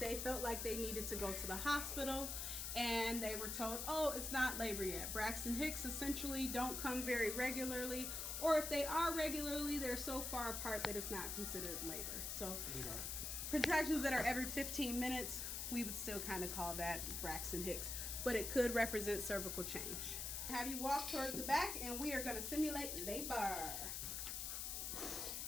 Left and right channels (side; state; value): left; noise; hiss, 3 dB below the sound